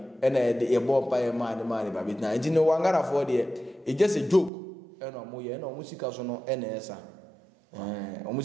ena e bo pa e ma ba bi na nti no wangara fo de e just a joke ena mo ye ena o musika so no ena esa o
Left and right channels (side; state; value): left; drops out; at 4.5 s